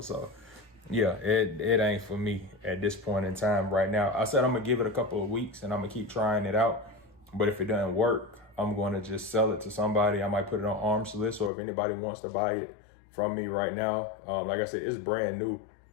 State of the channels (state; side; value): drops out; right; at 11.5 s